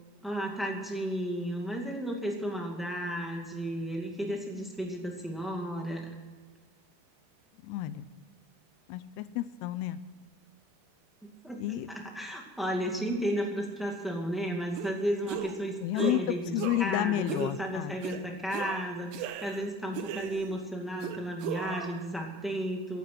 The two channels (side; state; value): both; normal; correlation 0.50